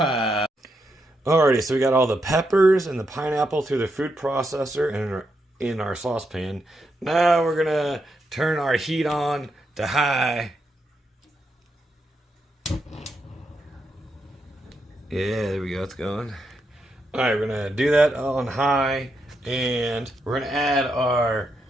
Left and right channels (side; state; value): both; normal; correlation 0.82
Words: Alrighty, so we got all the peppers and the pineapple through the food processor and in our saucepan. Now we're gonna turn our heat on to high. Yeah, there we go, it's going. Alright, we're gonna do that on high, and we're gonna add our